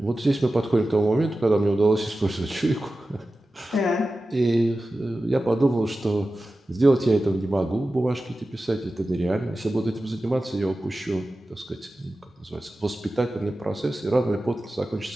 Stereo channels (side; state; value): both; normal; correlation 0.94